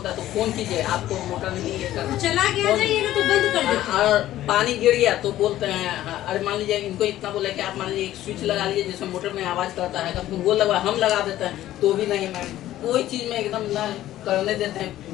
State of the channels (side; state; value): right; quieter; 13.8 dB